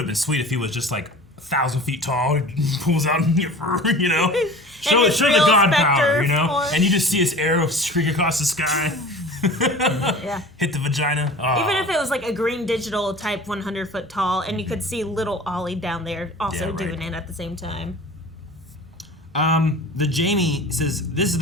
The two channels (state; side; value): normal; both; correlation 0.40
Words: been sweet if he was just like 1,000 feet tall, he pulls out your fur, Show the god power, and you just see his arrow streak across the sky. Hit the vagina. Oh. Even if it was like a green digital type 100 foot tall, and you could see little Ollie down there also doing it at the same time. The Jamie says, this is